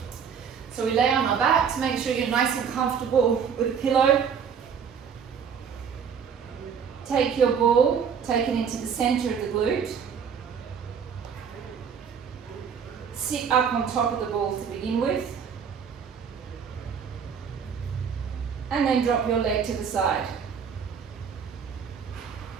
So we lay on our back to make sure you're nice and comfortable with a pillow. Take your ball, take it into the center of the glute. Sit up on top of the ball to begin with. And then drop your leg to the side.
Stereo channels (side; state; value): left; quieter; 7.0 dB